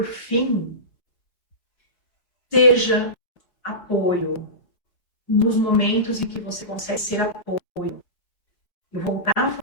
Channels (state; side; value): late; right; 4.5 ms